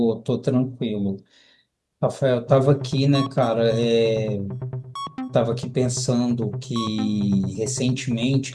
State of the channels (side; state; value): both; identical; correlation 1.00